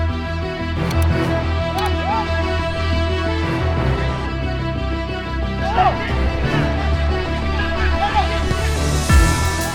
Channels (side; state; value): both; identical; correlation 1.00